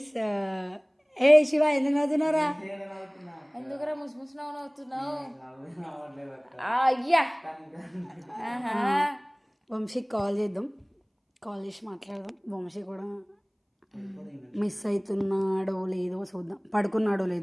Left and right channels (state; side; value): identical; both; correlation 1.00